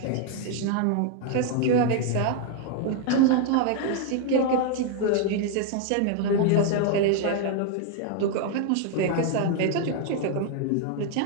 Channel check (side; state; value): both; different; correlation 0.00